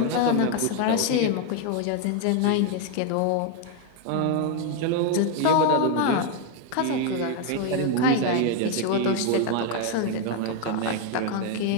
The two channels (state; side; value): different; both; correlation 0.01